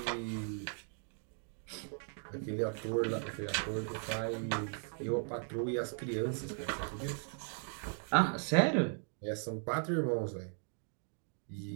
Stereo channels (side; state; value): left; silent; 53 dB below the other